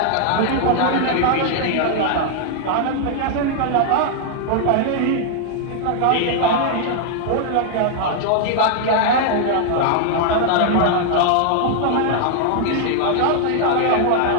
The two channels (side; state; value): both; different; correlation 0.00